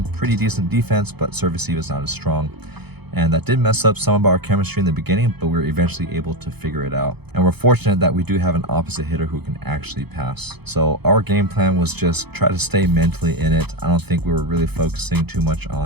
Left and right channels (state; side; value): late; left; 0.98 ms